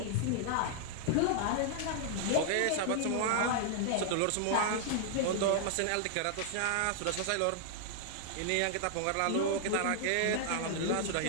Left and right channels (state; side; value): different; both; correlation 0.00